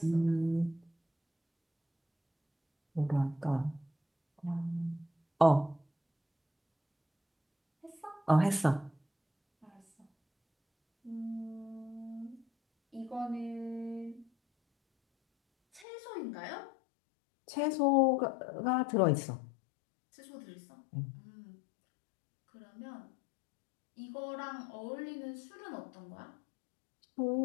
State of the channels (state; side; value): drops out; right; at 15.9 s